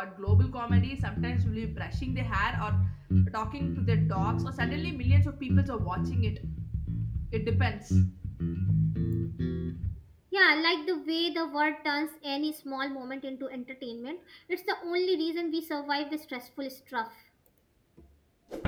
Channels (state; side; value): identical; both; correlation 1.00